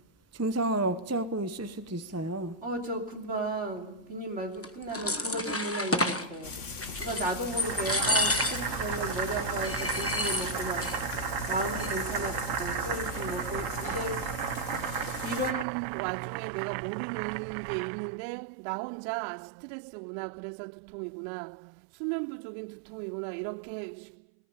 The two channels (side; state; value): left; drops out; at 15.7 s